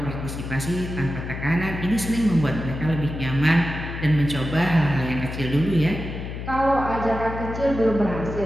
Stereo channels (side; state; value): left; noise; hum, 7 dB below the sound